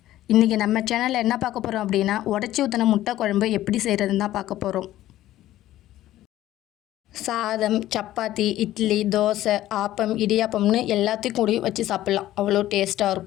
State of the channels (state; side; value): quieter; right; 14.3 dB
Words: இன்றைக்கி நம்ம சேனலில் என்ன பார்க்க போகிறோம் அப்படின்னா, உடச்சி ஊற்றின முட்டை குழம்பு எப்படி செய்கிறதுன்னு தான் பார்க்க போகிறோம். சாதம், சப்பாத்தி, இட்லி, தோசை, ஆப்பம், இடியாப்பம்னு எல்லாத்தையும் கூடி வச்சு சாப்பிட்லாம். அவ்வளோ டேஸ்ட்டாக